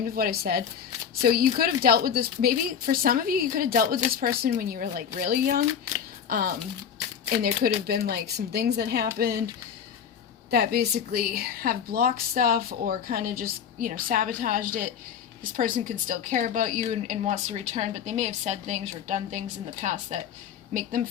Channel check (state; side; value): quieter; right; 7.9 dB